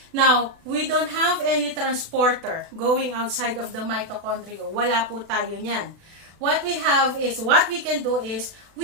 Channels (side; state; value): left; late; 36 ms